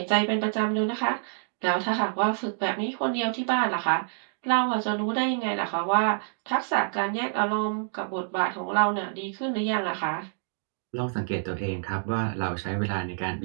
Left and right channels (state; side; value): silent; left; digital silence